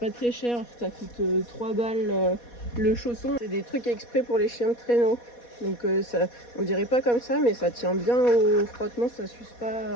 très cher, ça coûte 3 balles le chausson. C'est des trucs exprès pour les chiens de traîneau. Donc ça, on dirait pas comme ça, mais ça tient bien au frottement, ça s'use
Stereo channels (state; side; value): late; right; 4.2 ms